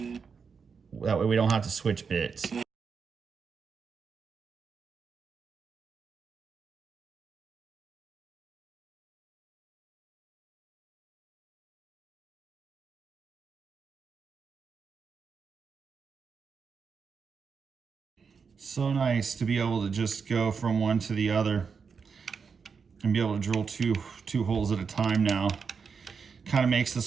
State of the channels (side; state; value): left; quieter; 5.8 dB